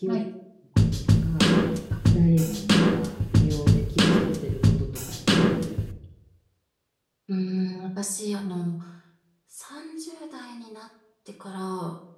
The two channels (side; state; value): both; identical; correlation 1.00